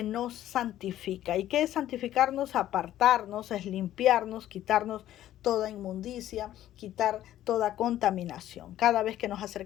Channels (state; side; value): quieter; right; 12.9 dB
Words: nos santifica. ¿Y qué es santificarnos? Apartarnos, es limpiarnos, quitarnos toda inmundicia, quitar toda contaminación. Cada vez que nos